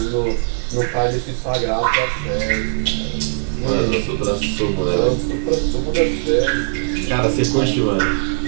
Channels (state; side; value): silent; left; digital silence